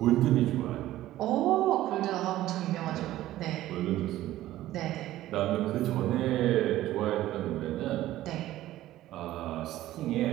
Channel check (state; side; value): quieter; left; 14.7 dB